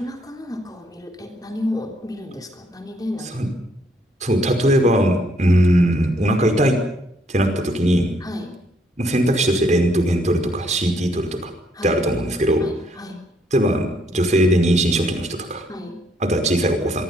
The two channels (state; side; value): normal; both; correlation 0.70